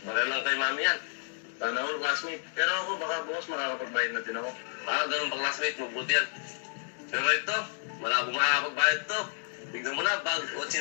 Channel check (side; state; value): right; silent; 57 dB below the other